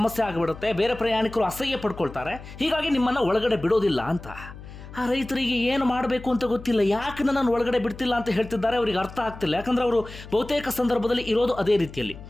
ಆಗಿಬಿಡುತ್ತೆ, ಬೇರೆ ಪ್ರಯಾಣಿಕರು ಅಸಹ್ಯ ಪಡ್ಕೊಳ್ತಾರೆ, ಹೀಗಾಗಿ ನಿಮ್ಮನ್ನು ಒಳಗಡೆ ಬಿಡೋದಿಲ್ಲ ಅಂತ. ಆ ರೈತರಿಗೆ ಏನು ಮಾಡಬೇಕು ಅಂತ ಗೊತ್ತಿಲ್ಲ. ಯಾಕೆ ನನ್ನನ್ನು ಒಳಗಡೆ ಬಿಡ್ತಿಲ್ಲ ಅಂತ ಹೇಳ್ತಿದ್ದಾರೆ, ಅವರಿಗೆ ಅರ್ಥ ಆಗ್ತಿಲ್ಲ. ಯಾಕಂದ್ರೆ ಅವರು ಬಹುತೇಕ ಸಂದರ್ಭದಲ್ಲಿ ಇರೋದು ಅದೇ ರೀತಿಯಲ್ಲಿ.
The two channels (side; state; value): left; noise; hum, 15 dB below the sound